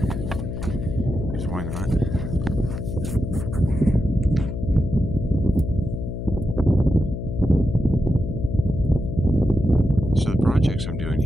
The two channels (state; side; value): noise; left; hum, 5 dB below the sound